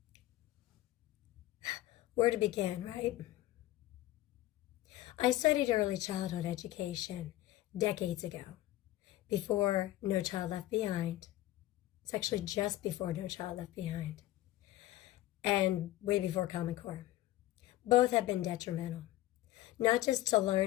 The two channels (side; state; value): right; quieter; 15.8 dB